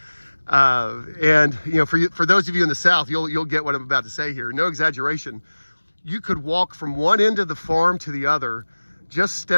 And for those of you in the South, you'll get what I'm about to say here. No exaggeration. You could walk from one end of the farm to the other just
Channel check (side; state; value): both; inverted; correlation -1.00